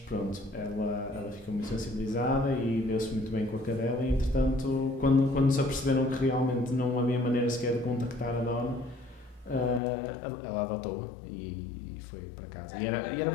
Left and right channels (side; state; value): right; drops out; at 9.8 s